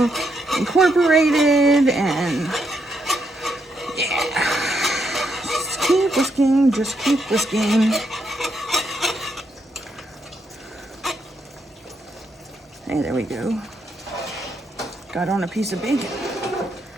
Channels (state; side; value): normal; both; correlation 0.78